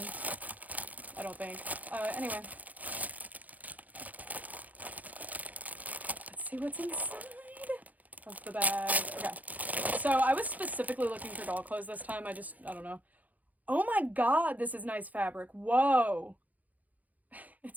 I don't think. Anyway. Let's see what's inside of the bag. Okay. So I was specifically looking for doll clothes this time. I don't know. Oh my god, this is nice fabric. Whoa.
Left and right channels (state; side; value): late; left; 0.078 ms